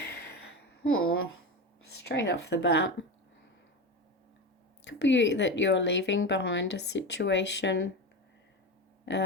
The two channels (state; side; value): normal; both; correlation 0.22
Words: straight off the bat, could be that you're leaving behind a situation